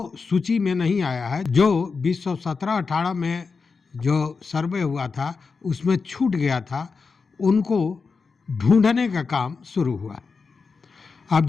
सूची में नहीं आया है, जो 2017-18 में जो सर्वे हुआ था उसमें छूट गया था, उनको ढूंढने का काम शुरू हुआ। आप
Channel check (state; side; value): quieter; right; 4.8 dB